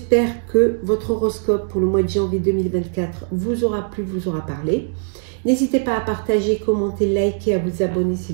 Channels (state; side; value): silent; left; digital silence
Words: que votre horoscope pour le mois de janvier 2024 vous aura plu, vous aura parlé. N'hésitez pas à partager, commenter, liker, à vous abonner si